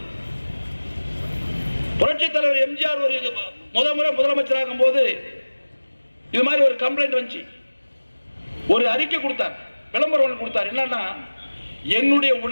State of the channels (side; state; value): both; inverted; correlation -1.00